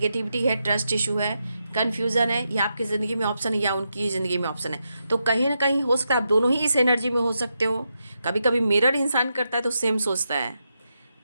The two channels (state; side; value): inverted; both; correlation -0.85